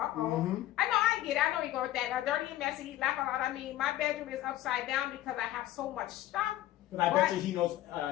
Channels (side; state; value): right; quieter; 14.4 dB